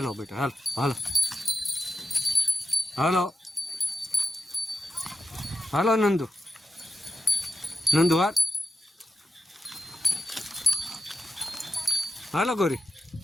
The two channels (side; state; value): both; normal; correlation 0.87